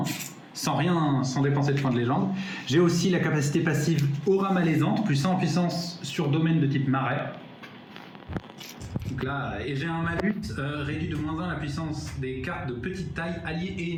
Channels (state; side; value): identical; both; correlation 1.00